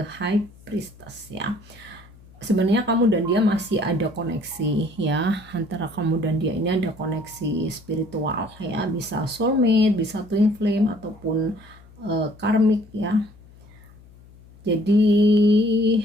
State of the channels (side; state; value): left; noise; hum, 24 dB below the sound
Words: High Priestess ya. Sebenarnya kamu dan dia masih ada koneksi ya. Antara kamu dan dia ini ada koneksi spiritual ya. Bisa soulmate, bisa twin flame, ataupun karmic ya. Jadi